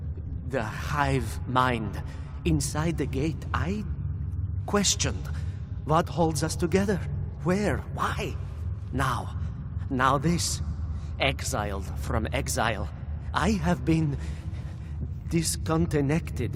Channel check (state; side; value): identical; both; correlation 1.00